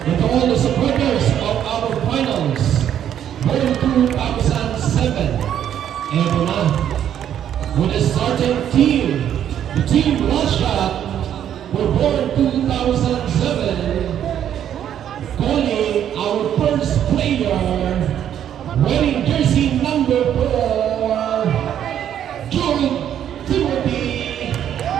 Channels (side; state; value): left; quieter; 10.0 dB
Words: and to all the supporters of our finals World 2007. Eto na, with the starting team, the team Russia were born 2007, calling our first player, wearing jersey number 4, Jude Timothy,